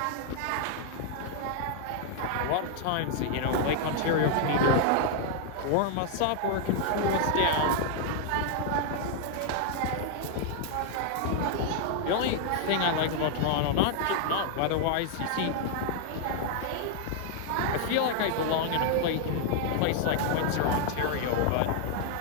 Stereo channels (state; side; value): different; both; correlation 0.00